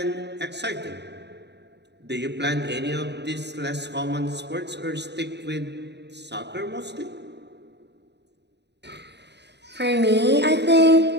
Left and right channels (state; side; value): late; left; 0.50 ms